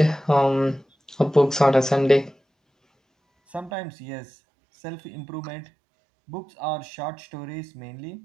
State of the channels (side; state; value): left; drops out; at 3.7 s